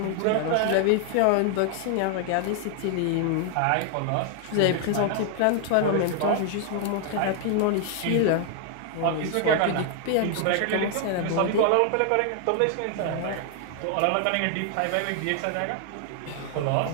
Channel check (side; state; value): both; different; correlation 0.00